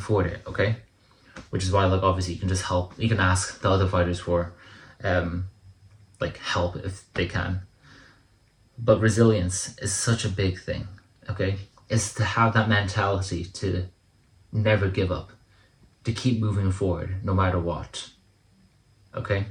it. Okay? Which is why, like, obviously you can just help. You can ask the other fighters for like help if they can. But resilience is such a big thing. Okay? It's to have that mentality to never give up, to keep moving forward no matter what. Okay?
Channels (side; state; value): both; identical; correlation 1.00